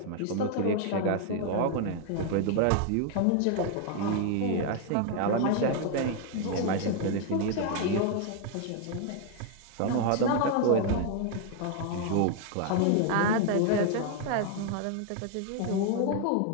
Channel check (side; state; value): both; different; correlation 0.00